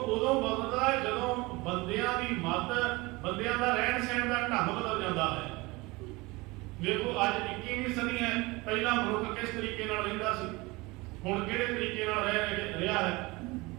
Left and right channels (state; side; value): quieter; left; 23.2 dB